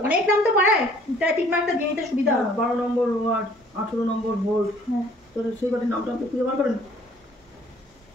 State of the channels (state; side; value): normal; both; correlation 0.57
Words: অনেক নাম তো পাড়ায়, তাই ঠিক মার্কটা দিয়ে নিতে সুবিধা হবে। 12 নম্বর ওয়ার্ড, 18 নম্বর ভোল্ট। হ্যাঁ, তো সেই বাড়ির নামটা আপনি খুঁজে বার করেন।